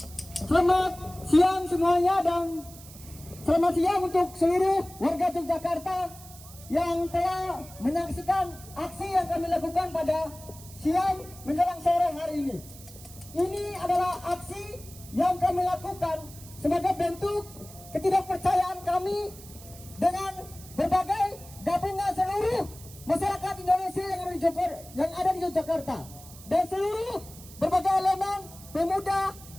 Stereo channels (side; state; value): right; noise; hiss, 18 dB below the sound